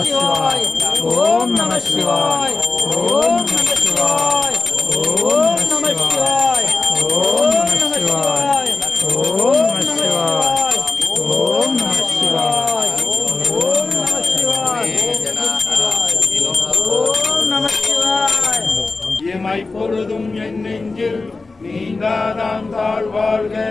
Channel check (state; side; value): quieter; right; 3.7 dB